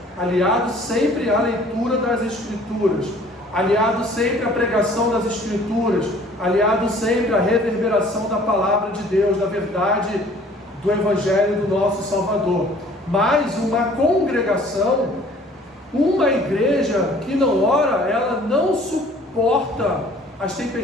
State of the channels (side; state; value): both; normal; correlation 0.53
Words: aliado sempre à leitura das Escrituras, aliado sempre à pregação das Escrituras, aliado sempre à reverberação da palavra de Deus, da verdade do Evangelho do nosso Salvador. Mas uma congregação, uma igreja que não ora, ela não suporta as